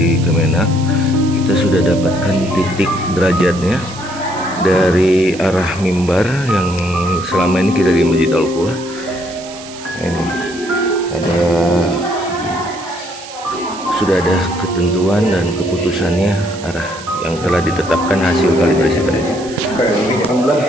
Kemenak, kita sudah dapatkan titik derajatnya dari arah mimbar yang selama ini kita di Masjid Al-Quwa. Ini sudah ada ketentuan dan keputusannya arah yang telah ditetapkan hasil kalibrasi tadi. Alhamdulillah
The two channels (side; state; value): right; noise; hiss, 15 dB below the sound